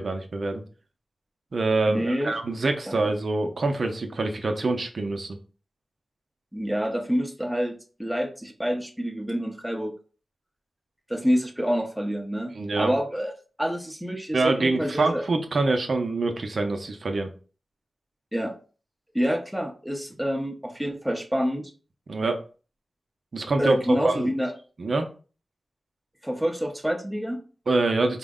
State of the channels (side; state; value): both; normal; correlation 0.95